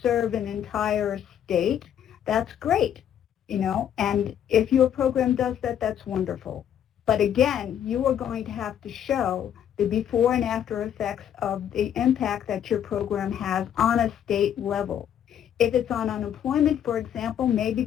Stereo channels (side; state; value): right; quieter; 9.7 dB